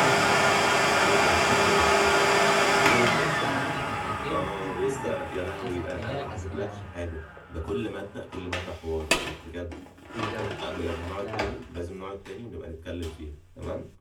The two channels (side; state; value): both; identical; correlation 1.00